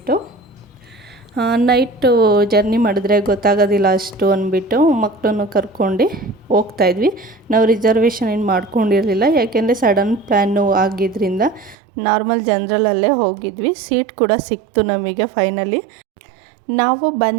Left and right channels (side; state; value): left; drops out; at 11.8 s